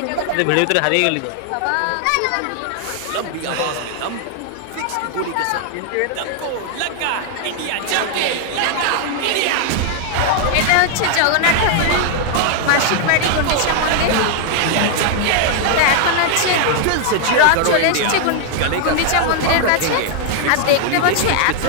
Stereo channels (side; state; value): both; different; correlation 0.00